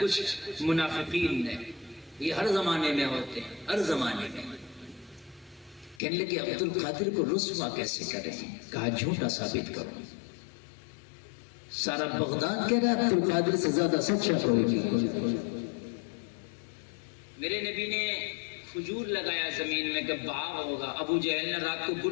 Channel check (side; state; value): right; drops out; at 6.0 s